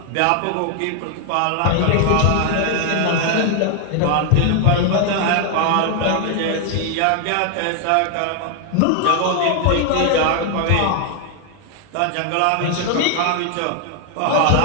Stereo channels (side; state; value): both; different; correlation 0.00